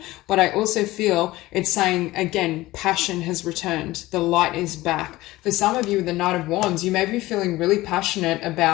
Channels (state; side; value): quieter; right; 18.1 dB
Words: But I also feel it's saying, again, passion has returned. The light is back. For some of you with the Knight of Wands, you may be feeling really passionate